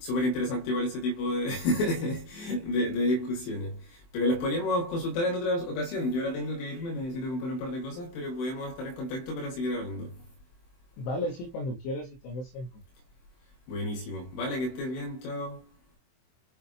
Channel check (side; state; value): right; late; 23 ms